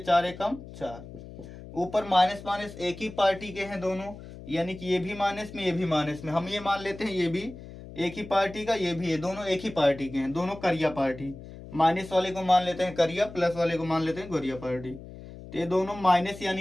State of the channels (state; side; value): noise; left; hum, 15 dB below the sound